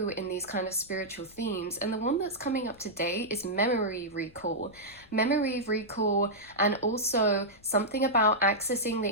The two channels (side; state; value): left; noise; rumble, 27 dB below the sound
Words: in these kind of spiritual themes. And the one that's coming up today is memory recall. Memory recall, and also something about accessing